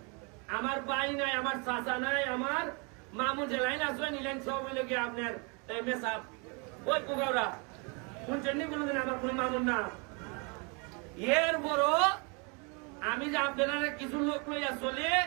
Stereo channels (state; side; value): quieter; left; 33.1 dB